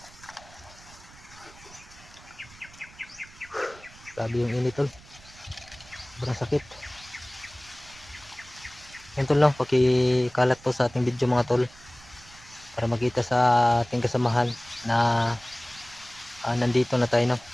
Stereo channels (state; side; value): noise; right; rumble, 22 dB below the sound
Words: Grabe yung init tol. Sobrang sakit. Yan tol no, pakikalat po sa ating video mga tol. Para makita sa ating kasamahan na nandito na tayo no,